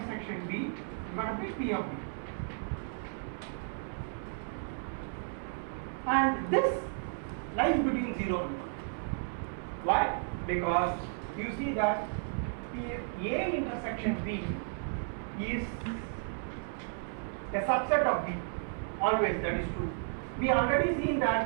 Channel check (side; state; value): left; silent; 55 dB below the other